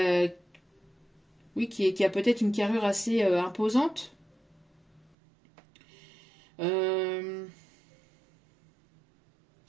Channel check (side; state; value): left; drops out; at 5.2 s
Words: oui, qui a peut-être une carrure assez imposante.